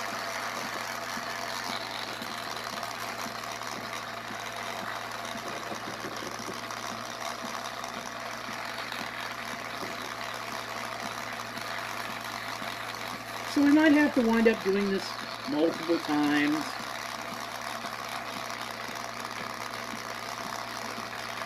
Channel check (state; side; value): identical; both; correlation 1.00